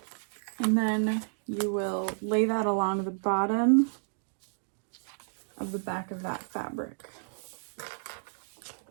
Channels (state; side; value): silent; left; digital silence